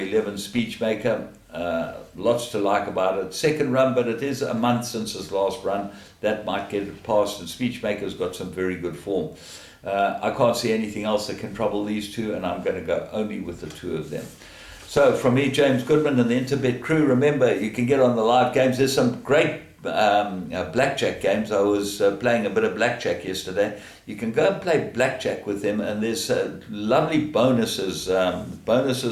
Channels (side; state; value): both; identical; correlation 1.00